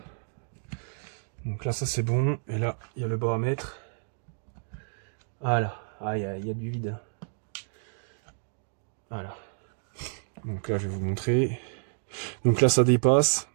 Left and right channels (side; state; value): left; silent; digital silence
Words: Donc là, ça c'est bon. Et là, il y a le bas à mettre. Voilà. Ah, il y a du vide. Voilà. Donc là, je vais vous montrer. Donc là, ça dépasse.